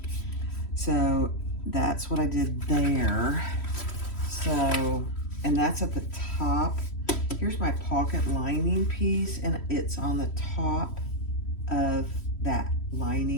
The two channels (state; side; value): late; right; 3.1 ms